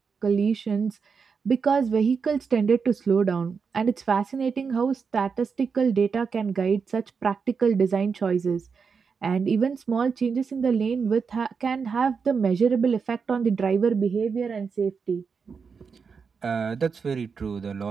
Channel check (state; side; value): quieter; left; 5.6 dB